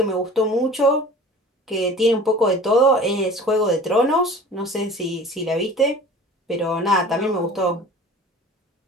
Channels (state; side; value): normal; both; correlation 0.43